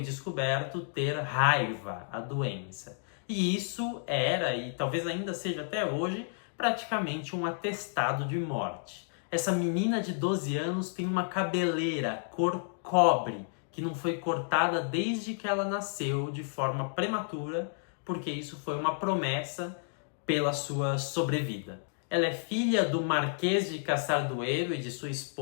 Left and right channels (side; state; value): right; silent; digital silence